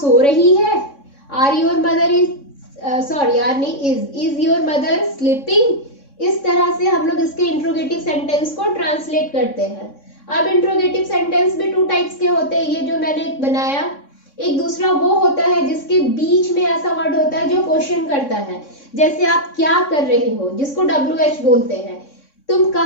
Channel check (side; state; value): right; late; 3.6 ms